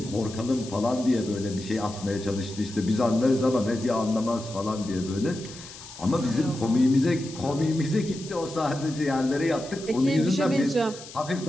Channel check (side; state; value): left; noise; hiss, 16 dB below the sound